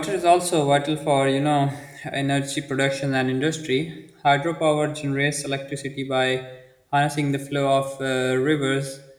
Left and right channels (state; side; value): identical; both; correlation 1.00